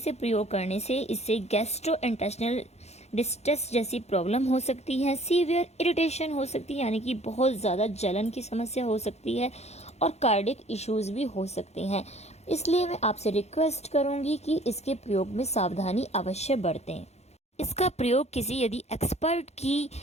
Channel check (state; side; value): late; right; 0.31 ms